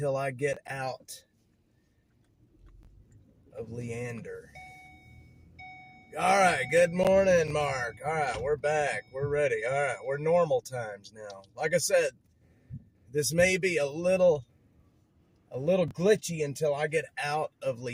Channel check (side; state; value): both; identical; correlation 1.00